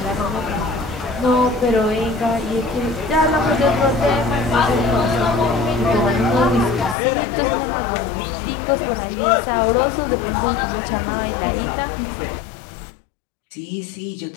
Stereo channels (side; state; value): right; drops out; at 7.0 s